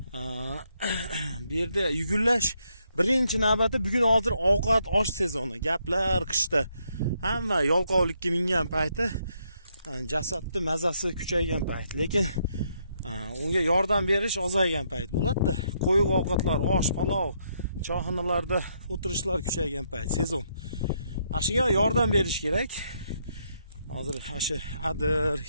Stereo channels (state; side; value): inverted; both; correlation -0.75